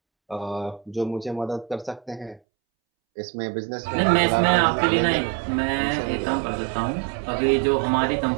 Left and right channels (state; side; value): drops out; left; at 2.4 s